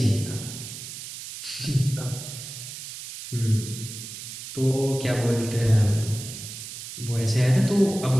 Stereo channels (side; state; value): right; noise; hiss, 10 dB below the sound